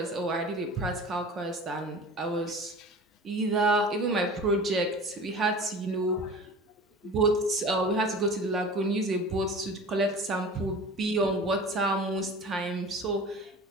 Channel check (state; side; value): normal; both; correlation 0.38